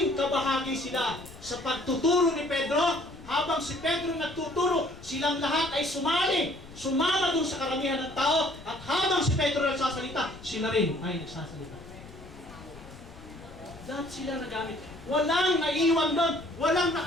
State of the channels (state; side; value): noise; left; rumble, 18 dB below the sound